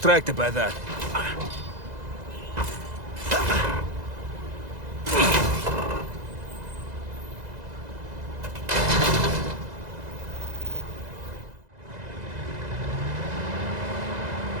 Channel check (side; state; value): left; late; 2.0 ms